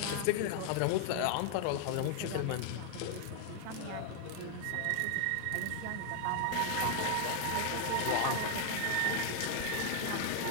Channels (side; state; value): both; different; correlation 0.00